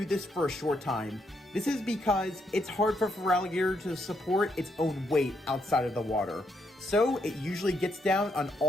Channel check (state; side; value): normal; both; correlation 0.77